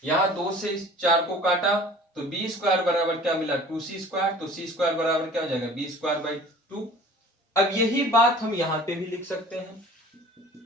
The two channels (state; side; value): normal; both; correlation 0.46